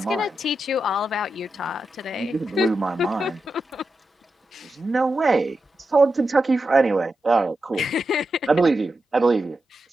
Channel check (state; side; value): normal; both; correlation 0.89